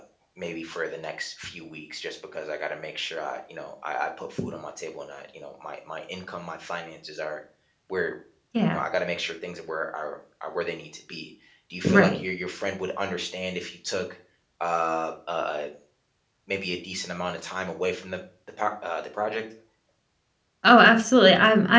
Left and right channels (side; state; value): both; identical; correlation 1.00